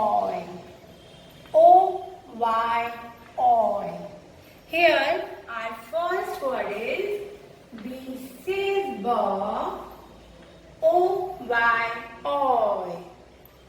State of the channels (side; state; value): both; identical; correlation 1.00